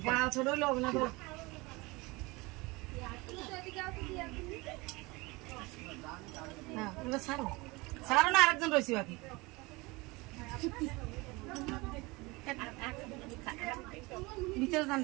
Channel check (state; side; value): quieter; left; 24.0 dB